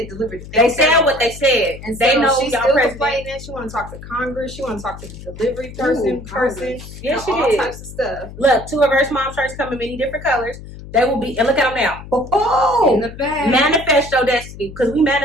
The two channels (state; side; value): noise; left; hum, 14 dB below the sound